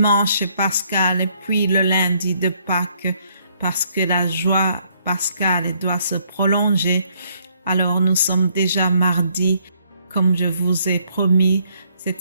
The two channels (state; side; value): inverted; both; correlation -0.69